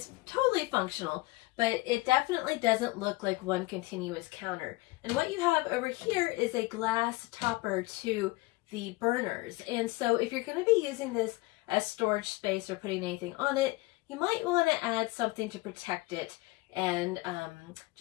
totally functional, but it definitely doesn't look like one continuous counter. And what you have over here is a glass topper to the burners. And so if you're going to be using this as storage space or putting anything on it, you might want to add something to protect it and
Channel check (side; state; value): right; quieter; 21.9 dB